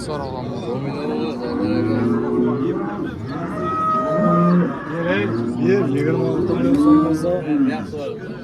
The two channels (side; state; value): both; identical; correlation 1.00